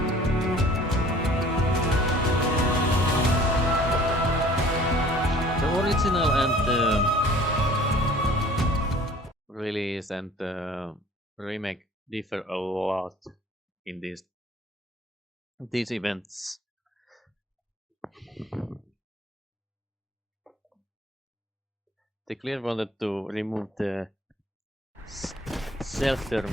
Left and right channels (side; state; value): both; normal; correlation 0.51